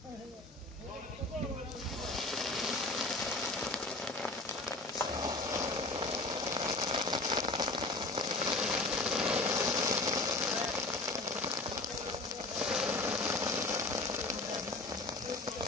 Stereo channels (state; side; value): quieter; right; 3.1 dB